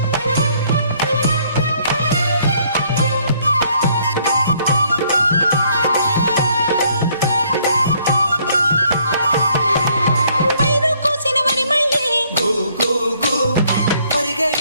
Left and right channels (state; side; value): inverted; both; correlation -0.65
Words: పైరు కోసిన వరి మళ్ళీ గు గు గు పరిగ